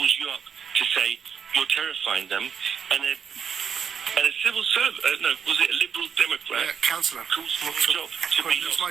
you up to say you're terrifying them, and a civil servant, was it a Liberal Democrat? Councillor. Calls for a job. It's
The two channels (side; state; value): left; quieter; 7.3 dB